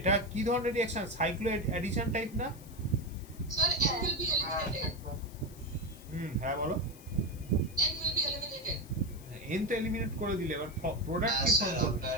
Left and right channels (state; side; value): noise; left; hiss, 21 dB below the sound